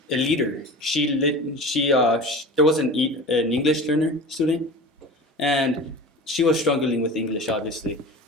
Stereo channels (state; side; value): normal; both; correlation 0.35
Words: a leader. There was an English learner student. And she was struggling with English, obviously.